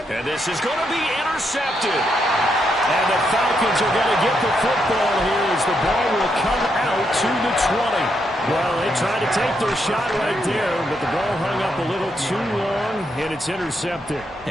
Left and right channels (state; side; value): normal; both; correlation 0.79